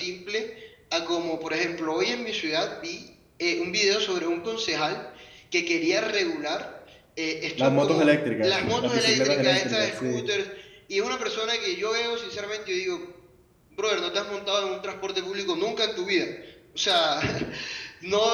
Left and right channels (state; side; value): identical; both; correlation 1.00